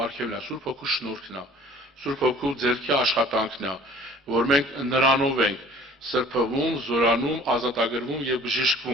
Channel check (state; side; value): normal; both; correlation 0.50